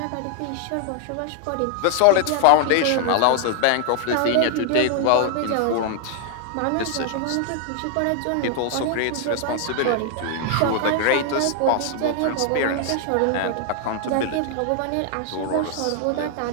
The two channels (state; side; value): different; both; correlation 0.00